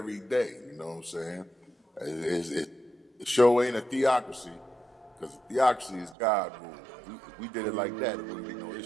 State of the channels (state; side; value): drops out; left; at 6.2 s